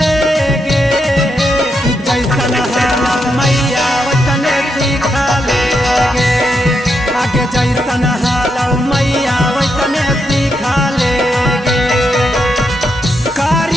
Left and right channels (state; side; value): normal; both; correlation 0.82